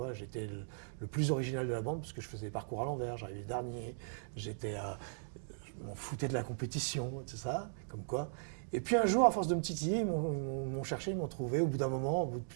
J'étais le plus original de la bande parce que je faisais les parcours à l'envers, j'arrivais dernier. Je m'en foutais de la compétition, tout ça, comme quoi. Et puis un jour, à force de me titiller, ils m'ont cherché, ils m'ont trouvé au bout d'un moment, au bout de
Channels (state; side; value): silent; left; digital silence